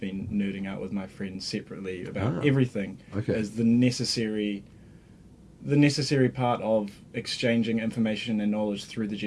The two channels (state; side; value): identical; both; correlation 1.00